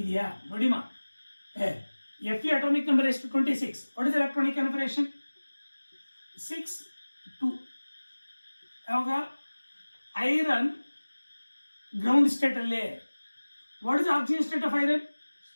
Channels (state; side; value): inverted; both; correlation -1.00